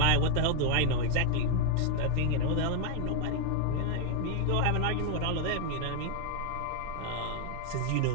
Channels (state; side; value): different; both; correlation 0.00